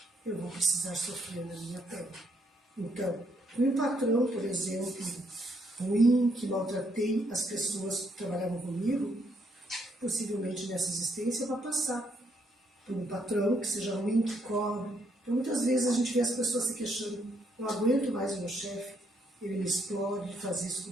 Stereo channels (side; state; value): both; normal; correlation 0.73